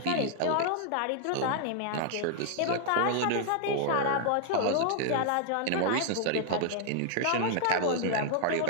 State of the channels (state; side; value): different; both; correlation 0.00